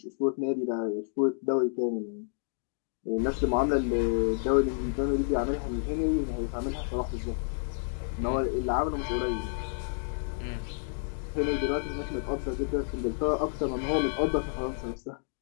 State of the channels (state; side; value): silent; right; digital silence